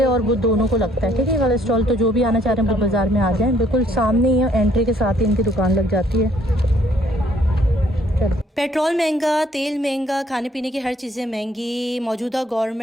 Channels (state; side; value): normal; both; correlation 0.64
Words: और बुध दोनों को लगता है, ठीक है। वाला स्टॉल तो जो भी आना चाह रहे हैं बुध बाज़ार में आ जाएँ, बिल्कुल सामने ही है, एंट्री के साथ ही इनकी दुकान लग जाती है। चलो। पेट्रोल महंगा, तेल महंगा, खाने पीने की हर चीज़ें महंगी। मौजूदा